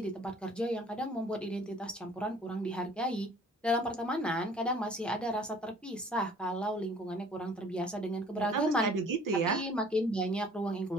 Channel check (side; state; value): both; normal; correlation 0.53